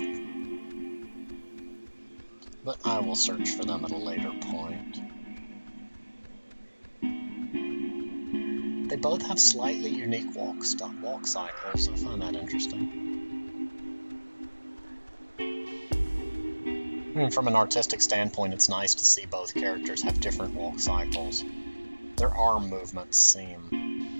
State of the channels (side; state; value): both; inverted; correlation -1.00